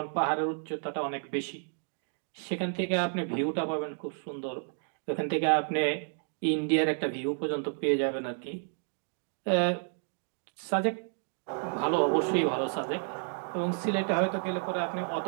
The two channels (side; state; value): left; silent; 57 dB below the other